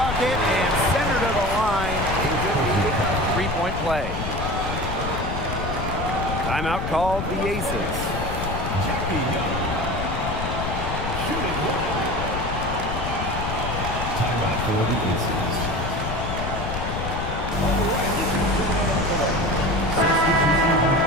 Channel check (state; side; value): noise; left; rumble, 4 dB below the sound